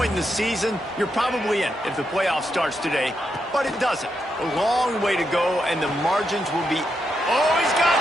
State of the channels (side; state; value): both; normal; correlation 0.83